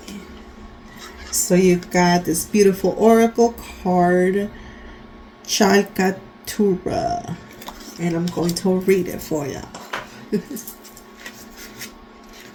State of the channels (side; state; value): both; identical; correlation 1.00